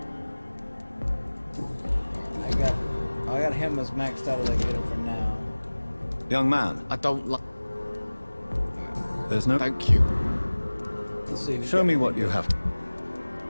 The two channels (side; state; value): both; inverted; correlation -1.00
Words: I got him as maxed out as I can get him for now. Young man, I don't like. there's no... Thank you. Let's see. Show me what you have.